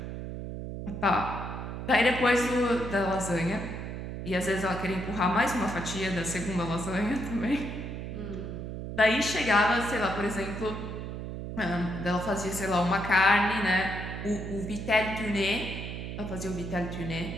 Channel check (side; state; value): right; noise; hum, 7 dB below the sound